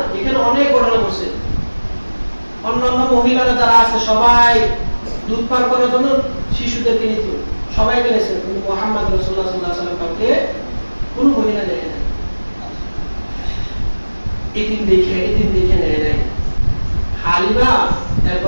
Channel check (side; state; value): both; inverted; correlation -1.00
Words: এখানে অনেক ঘটনা ঘটছে। অন্যান্য মহিলারা যারা আছে সবাই দুধ পান করার জন্য শিশুদেরকে নিত, সবাইকে নিয়েছে, কিন্তু মুহাম্মদ রাসূলুল্লাহ সাল্লাল্লাহু আলাইহি ওয়াসাল্লাম কাউকে কোনো মহিলা নেয় না। এদিন দেখে নেয় নাই। হালিমা